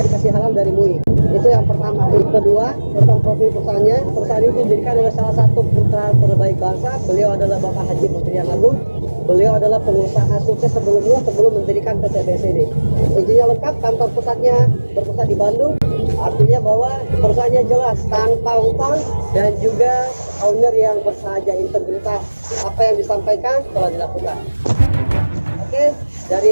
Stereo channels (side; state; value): both; inverted; correlation -1.00